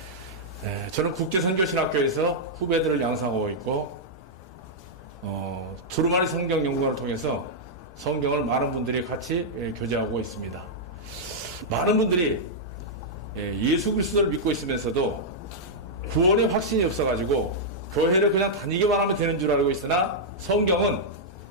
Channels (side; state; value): both; normal; correlation -0.07